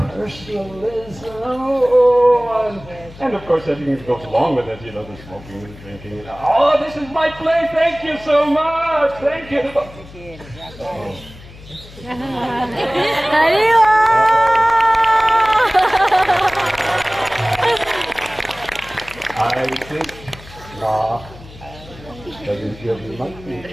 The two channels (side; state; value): left; noise; hum, 19 dB below the sound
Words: And of course, everything that goes along with it, you know, the smoking and drinking. Oh, this is my place. Thank you so much. Thank you. I think that you might be in